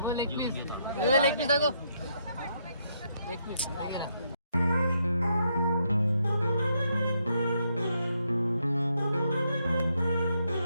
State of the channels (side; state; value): both; inverted; correlation -0.76